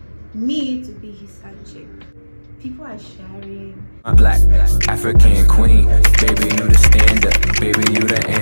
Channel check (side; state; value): both; inverted; correlation -1.00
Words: to be his side chick. People are sharing. My black African queen, baby you the standard, baby you the